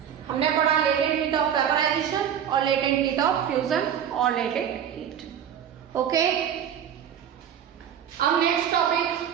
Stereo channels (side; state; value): left; quieter; 9.1 dB